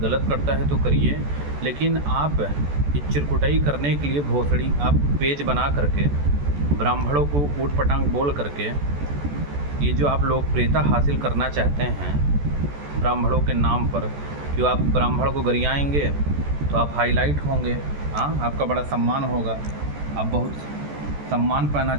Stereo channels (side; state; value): left; late; 14 ms